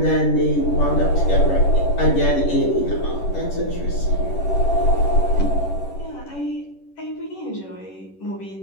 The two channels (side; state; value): right; late; 10 ms